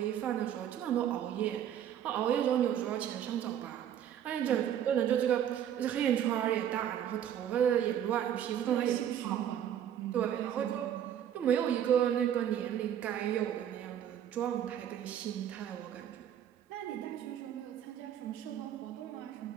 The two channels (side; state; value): left; quieter; 10.0 dB